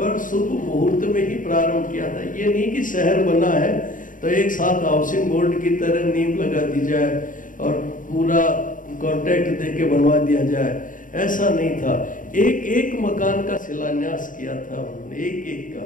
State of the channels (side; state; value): right; late; 0.38 ms